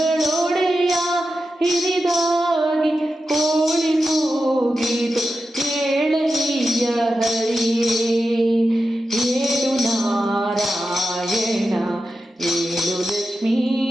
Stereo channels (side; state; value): both; normal; correlation 0.91